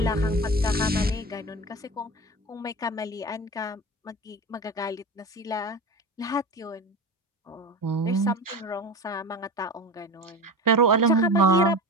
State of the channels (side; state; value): both; normal; correlation 0.28